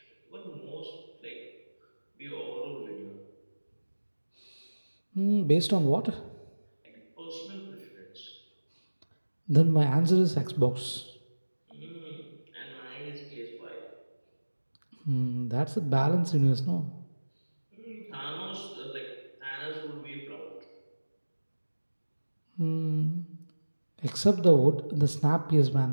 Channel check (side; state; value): both; inverted; correlation -1.00